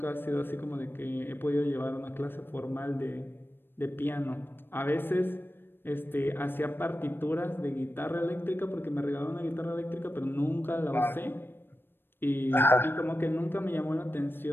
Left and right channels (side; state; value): right; late; 0.099 ms